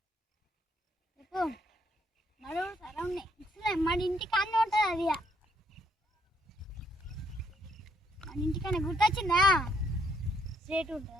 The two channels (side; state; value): both; normal; correlation 0.70